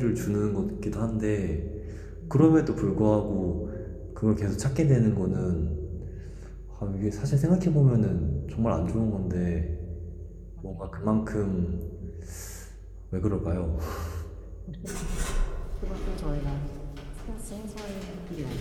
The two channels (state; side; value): identical; both; correlation 1.00